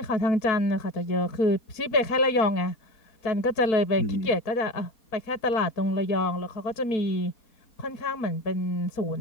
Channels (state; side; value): late; right; 4.2 ms